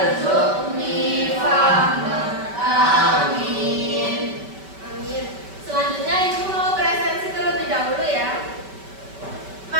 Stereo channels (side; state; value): left; late; 5.2 ms